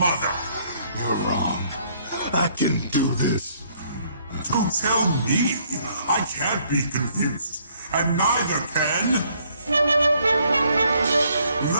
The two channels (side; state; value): both; inverted; correlation -0.66